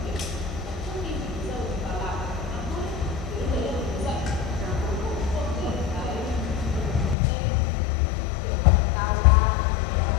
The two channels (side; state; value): right; drops out; at 7.2 s